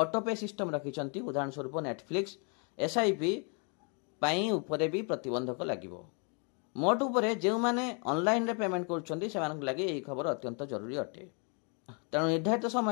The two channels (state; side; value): quieter; right; 36.9 dB